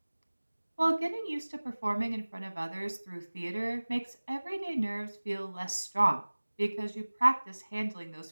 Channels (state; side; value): inverted; both; correlation -1.00